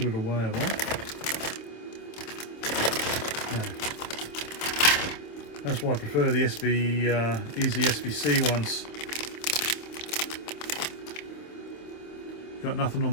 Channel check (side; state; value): right; late; 26 ms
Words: it away a lot. That's why I prefer the Easy SBC ones. Got nothing